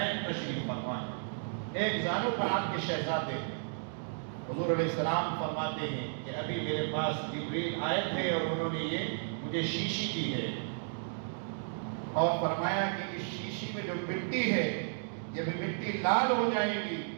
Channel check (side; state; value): left; silent; digital silence